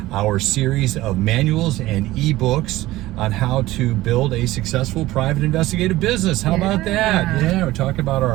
our series of manuals and ebooks on how to build a successful private investigative business. How about that? Yeah, we're talking about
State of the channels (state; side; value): quieter; left; 17.2 dB